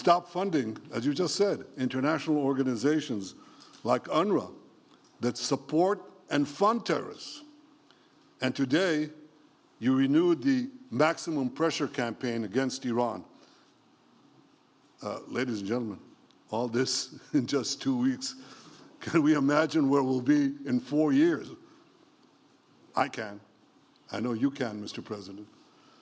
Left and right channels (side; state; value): both; identical; correlation 1.00